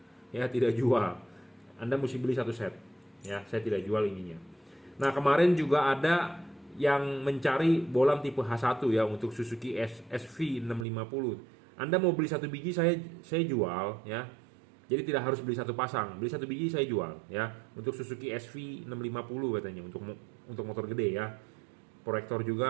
Ya, tidak jual. Anda mesti beli 1 set. Ya, saya tidak jual ininya. Nah, kemarin juga ada yang mencari bolam tipe H1 ya untuk Suzuki SV650. Anda mau beli 1 biji saya jual ya. Jadi tidak harus beli 1 pasang, beli 1 biji saya jual ya. Untuk Suzuki SV650 katanya untuk motor gede ya. Proyektor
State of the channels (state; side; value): drops out; left; at 10.9 s